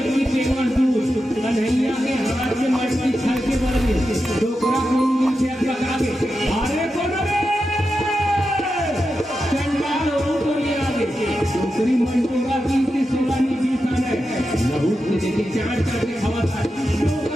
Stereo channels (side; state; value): both; normal; correlation 0.89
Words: पेवर दूध कन्हैया के हाथ में मटकी छल के बड़ी डोकरा को से लगा के अरे कौन रे चंडाल ऊपर ले आगे डोकरी मंडोगा की सुलानी बीसान है लहू के देखे चार करके खवा था